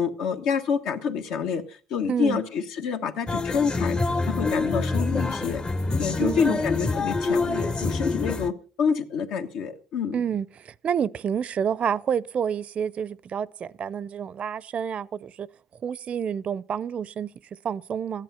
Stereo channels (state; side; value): normal; both; correlation 0.70